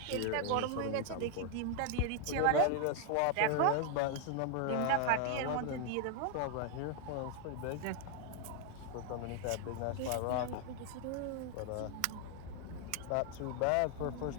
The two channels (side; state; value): both; different; correlation 0.00